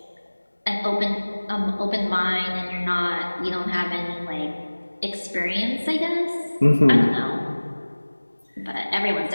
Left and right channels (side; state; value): both; inverted; correlation -1.00